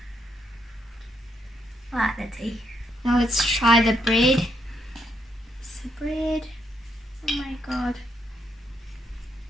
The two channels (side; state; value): both; normal; correlation 0.77